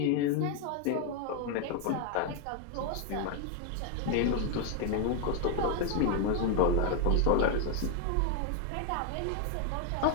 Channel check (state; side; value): different; both; correlation 0.01